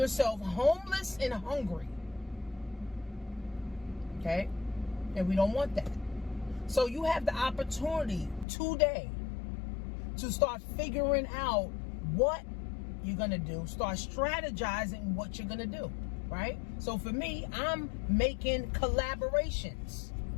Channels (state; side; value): drops out; right; at 8.5 s